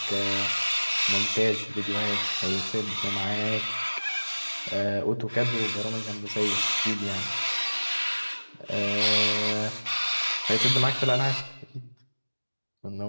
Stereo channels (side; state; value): both; inverted; correlation -1.00